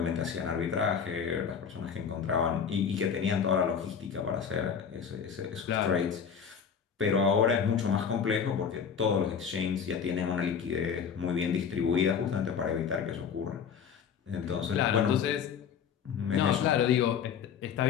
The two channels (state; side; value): quieter; right; 7.1 dB